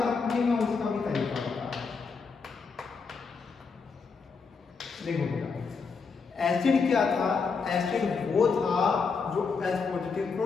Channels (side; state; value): right; quieter; 5.0 dB